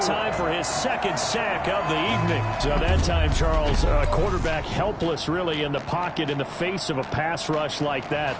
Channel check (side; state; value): both; identical; correlation 1.00